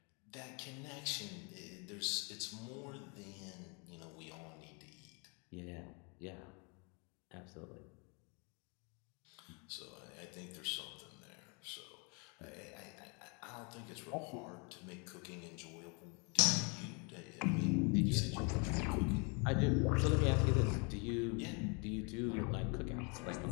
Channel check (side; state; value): right; quieter; 33.7 dB